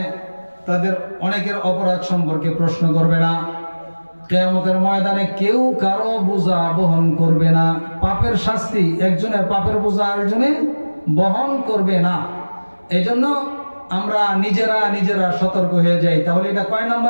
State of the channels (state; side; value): inverted; both; correlation -1.00